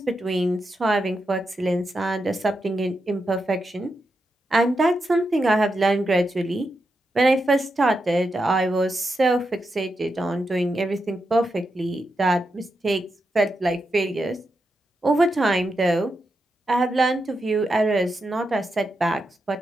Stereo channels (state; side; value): normal; both; correlation 0.86